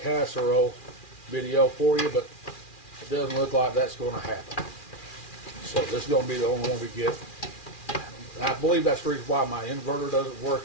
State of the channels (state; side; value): late; right; 2.4 ms